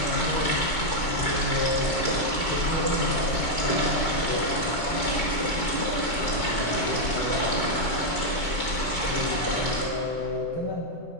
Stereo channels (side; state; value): right; late; 4.5 ms